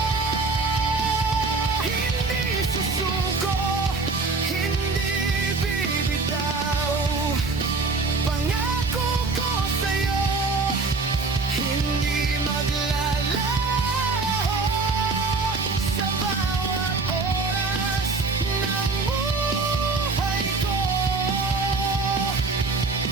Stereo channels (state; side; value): quieter; left; 4.0 dB